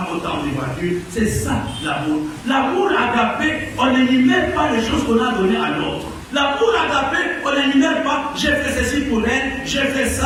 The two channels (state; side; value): identical; both; correlation 1.00